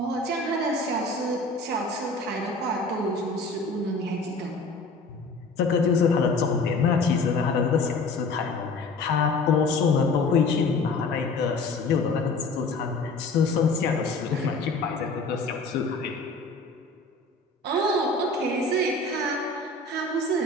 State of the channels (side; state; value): right; quieter; 3.2 dB